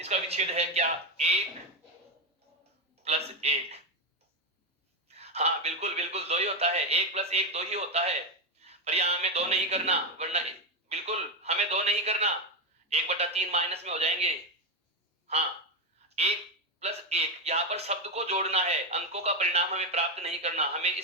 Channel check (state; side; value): normal; both; correlation 0.10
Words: विच्छेद है क्या, एक प्लस एक। हाँ बिल्कुल बिल्कुल, दो ही होता है, एक प्लस एक दो ही होता है। पर यहाँ हमें दो नहीं करना, वरना बिल्कुल हमें दो नहीं करना, 1/3 माइनस में हो जाएंगे। हाँ, एक प्लस एक, यहाँ पर शब्द को जोड़ना है, अंकों का परिणाम हमें प्राप्त नहीं करना, हमें